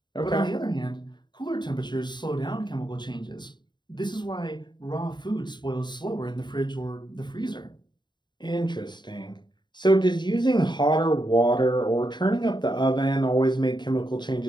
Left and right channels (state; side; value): late; right; 0.22 ms